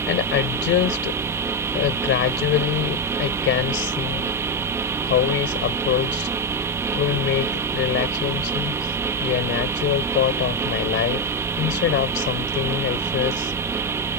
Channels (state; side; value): normal; both; correlation 0.06